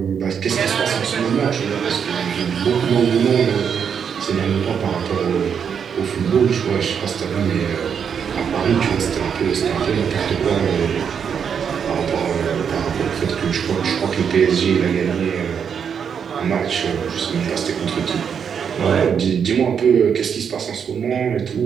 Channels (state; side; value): quieter; left; 7.3 dB